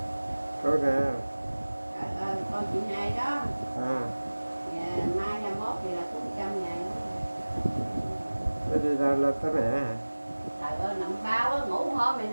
Con nè. Trời ơi, con chị này đó. À. Mai 21 thì là cũng 100 ngày nữa. Thế đi ra lên tới mẹ hả? Trời ơi, nằm bao á, ngủ hôm này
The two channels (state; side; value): inverted; both; correlation -1.00